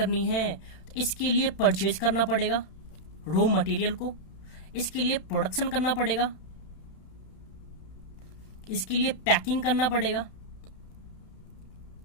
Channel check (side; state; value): right; late; 31 ms